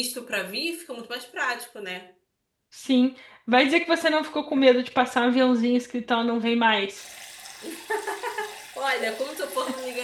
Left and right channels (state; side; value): identical; both; correlation 1.00